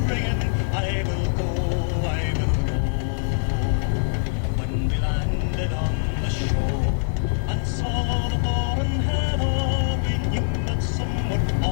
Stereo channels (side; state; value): right; silent; digital silence